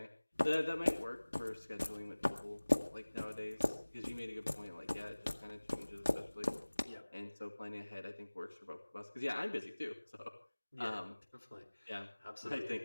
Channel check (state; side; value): inverted; both; correlation -1.00